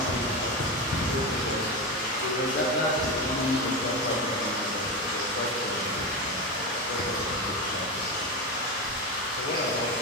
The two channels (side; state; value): both; normal; correlation 0.18